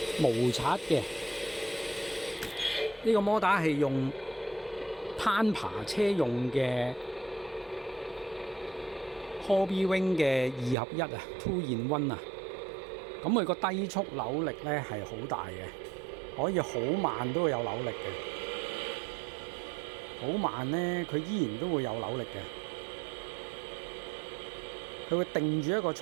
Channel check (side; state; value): left; drops out; at 10.8 s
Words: 無刷嘅，呢個摩打係用攀爬車用嘅 Hobby Wing 嘅2合1啊 ，2 in 1啊。咁佢個低速扭力咧係好大嘅，可以好慢都會有扭力嘅，好慢咧佢依然都會有扭力嘅，佢會定住一個